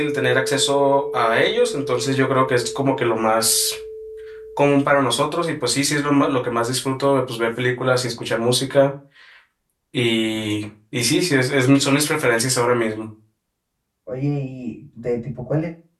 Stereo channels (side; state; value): both; identical; correlation 1.00